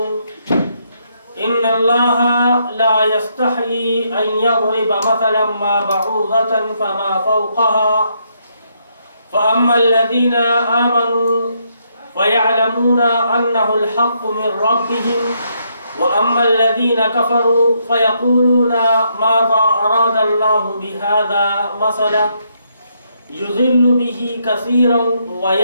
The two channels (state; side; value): inverted; both; correlation -0.75